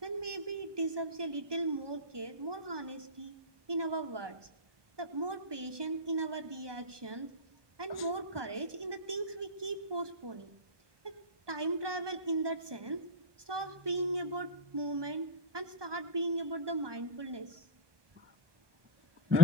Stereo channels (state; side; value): late; left; 1.2 ms